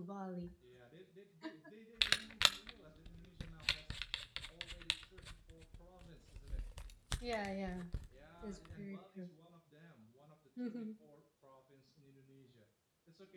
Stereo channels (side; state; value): both; identical; correlation 1.00